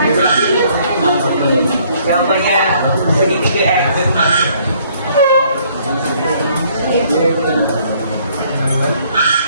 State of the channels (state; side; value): inverted; both; correlation -0.63